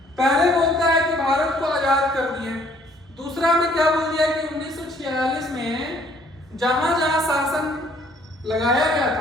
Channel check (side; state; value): both; normal; correlation 0.62